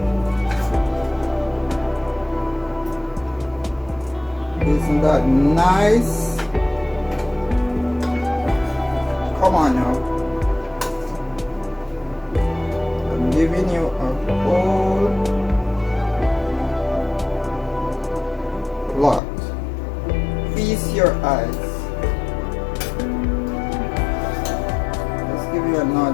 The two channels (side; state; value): right; drops out; at 19.2 s